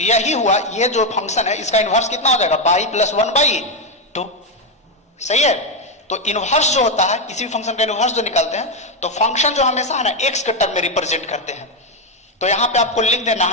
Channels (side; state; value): both; normal; correlation 0.06